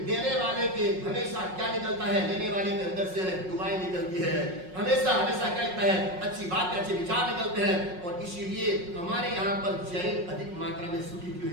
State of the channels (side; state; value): left; late; 5.5 ms